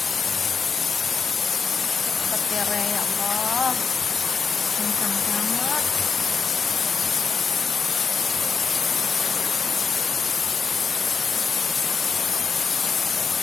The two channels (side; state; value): right; quieter; 5.3 dB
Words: Petir ya Allah, kencang banget.